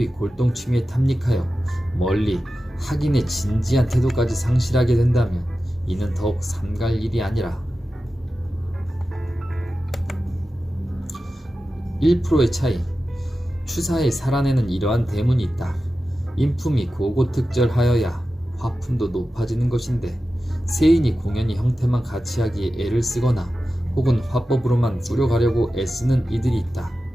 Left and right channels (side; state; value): both; normal; correlation 0.93